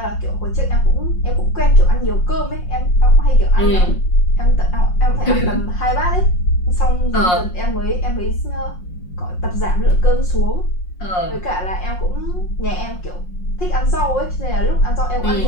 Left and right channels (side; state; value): right; late; 5.6 ms